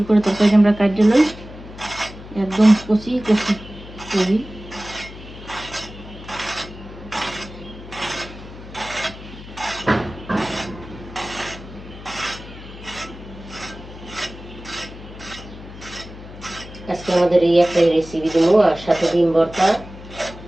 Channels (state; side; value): noise; left; hum, 15 dB below the sound